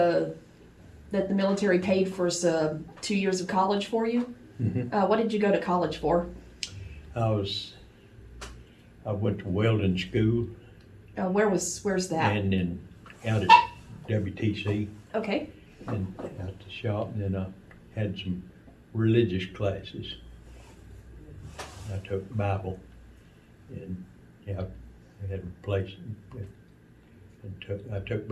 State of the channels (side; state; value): both; identical; correlation 1.00